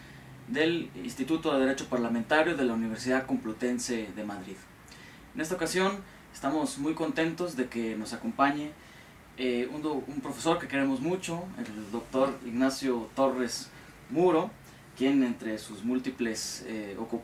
del Instituto de Derecho Parlamentario de la Universidad Complutense de Madrid. En esta ocasión estamos muy contentos de que nos acompañe un profesor que queremos mucho, el doctor Ignacio Torres Muro, quien entre sus múltiples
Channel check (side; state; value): both; identical; correlation 1.00